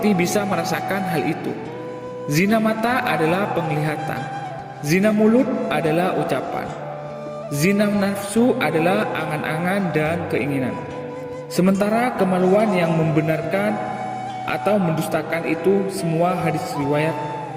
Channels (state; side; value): identical; both; correlation 1.00